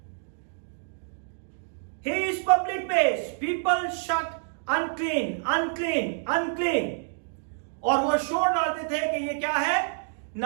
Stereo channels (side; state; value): left; silent; digital silence